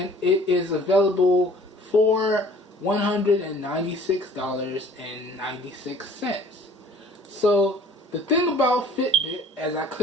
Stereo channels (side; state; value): both; normal; correlation 0.52